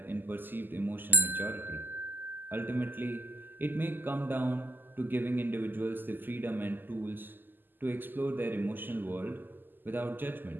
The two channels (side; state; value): left; late; 0.091 ms